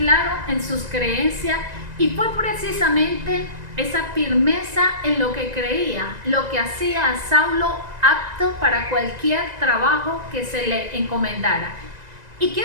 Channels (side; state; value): left; late; 1.9 ms